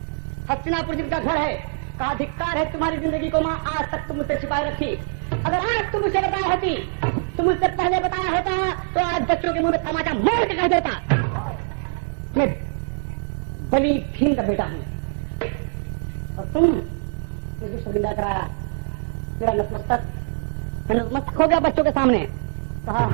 हस्तिनापुर जिनका घर है, का अधिकार है तुम्हारी जिंदगी को माँ आज तक तुम मुझसे छिपाए रखी। अगर आज तुम मुझे बताया होती, तुम मुझसे पहले बताया होता तो आज बच्चों के मुंह में तमाचा मार के कह देता मैं बली भीम का बेटा हूँ। और तुम मुझे शर्मिंदा कराया, मेरा नतमस्तक, मैं नतमस्तक हो गया बच्चों के सामने। कहा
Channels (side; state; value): left; silent; digital silence